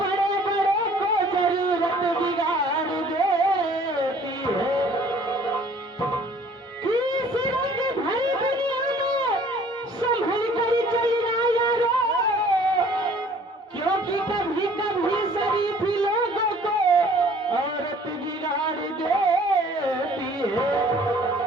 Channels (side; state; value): both; normal; correlation 0.54